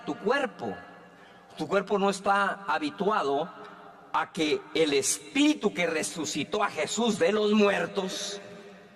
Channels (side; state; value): both; identical; correlation 1.00